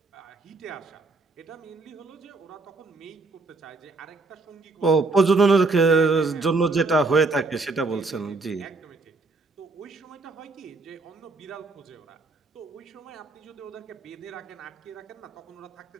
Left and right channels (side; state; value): left; quieter; 3.5 dB